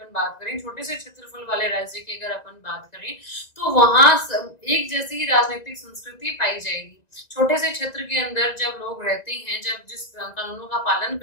बात करें, छोटे से क्षेत्रफल वाले राज्य की अगर अपन बात करें, तो वहां एक जैसी ही राजनीतिक संस्कृति पाई जाएगी। छोटे से क्षेत्र के अंदर जब लोग रहते हैं, जब जिस कानूनों का पालन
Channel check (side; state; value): right; late; 1.9 ms